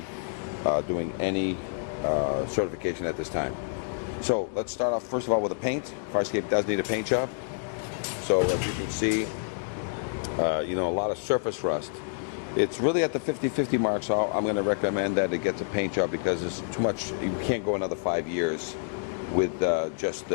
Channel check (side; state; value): right; silent; digital silence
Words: doing any certification at this time. So let's start off first of all with the paint. Fire escape does need a paint job. So as you can see, a lot of surface rust. It's really at the 50-50 mark, so I'm going to recommend that it gets a paint job because it's too much. You can't go another 5 years with just